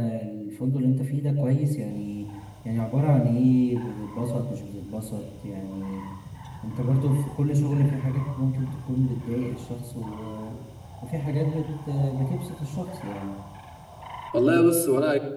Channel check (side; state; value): both; identical; correlation 1.00